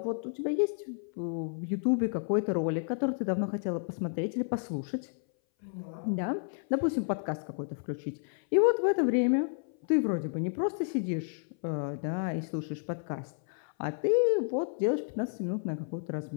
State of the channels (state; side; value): silent; right; 57 dB below the other